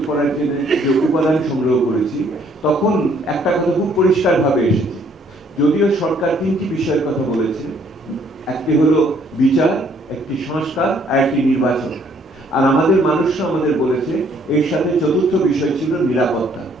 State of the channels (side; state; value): both; normal; correlation 0.64